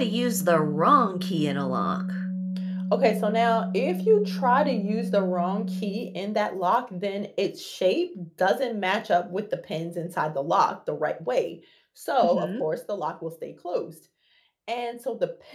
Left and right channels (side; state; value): both; identical; correlation 1.00